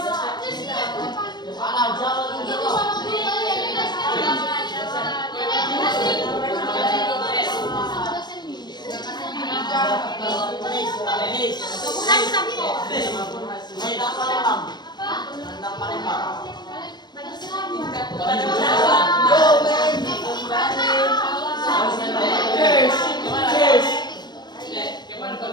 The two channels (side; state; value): right; late; 0.21 ms